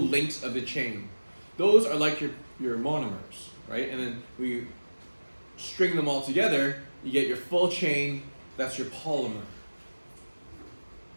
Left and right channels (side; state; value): both; inverted; correlation -1.00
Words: of the chain. Those are like your monomers, right? And then when you string them all together, you get your full chain. That's your polymer.